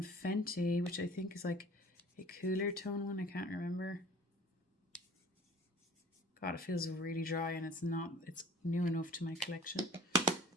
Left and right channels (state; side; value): normal; both; correlation 0.47